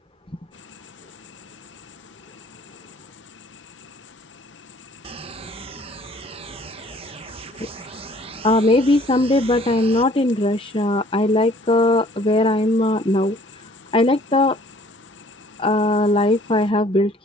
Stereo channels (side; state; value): both; normal; correlation 0.56